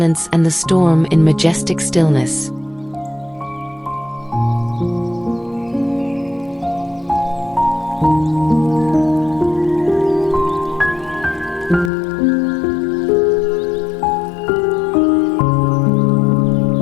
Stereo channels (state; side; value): drops out; right; at 11.9 s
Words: and the storm in majestic stillness.